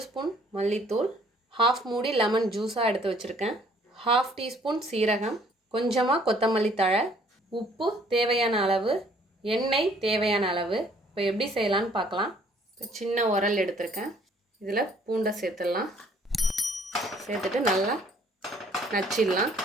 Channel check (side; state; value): both; normal; correlation 0.60